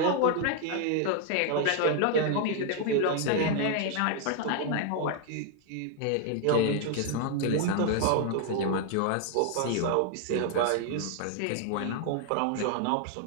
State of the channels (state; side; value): different; both; correlation 0.00